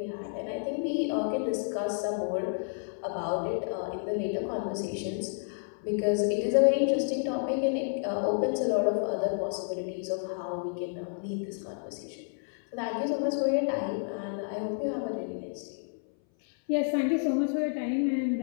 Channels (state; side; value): silent; right; 58 dB below the other